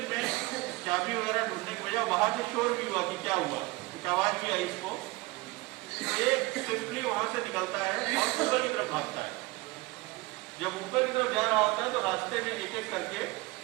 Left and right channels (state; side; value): quieter; left; 22.1 dB